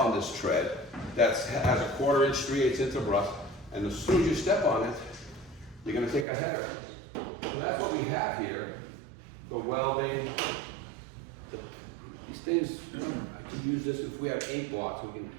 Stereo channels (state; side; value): drops out; left; at 6.2 s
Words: this tread that has a 1/4 inch, 3/8 inch of rust, and as soon as you step on it, you're going to take a header. So that's what we have here. The welding, these things, I can use this if we have ink blots, we can